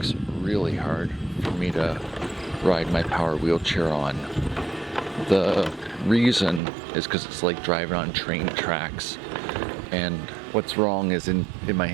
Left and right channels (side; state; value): left; drops out; at 6.6 s